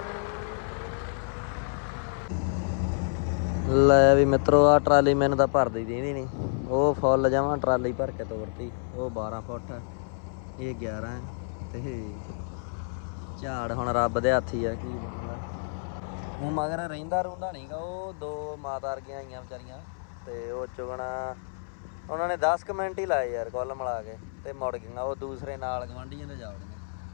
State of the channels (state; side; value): silent; right; 59 dB below the other